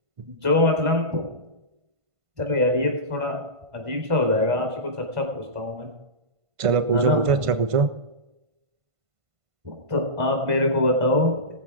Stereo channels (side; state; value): left; late; 1.5 ms